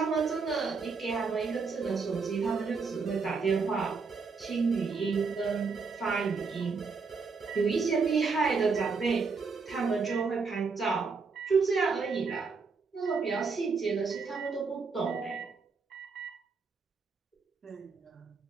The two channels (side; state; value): left; quieter; 4.8 dB